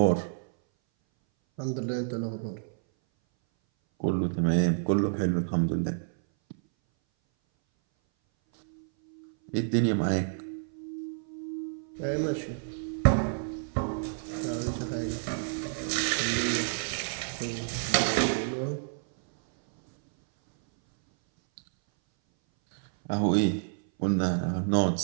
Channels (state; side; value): silent; left; 58 dB below the other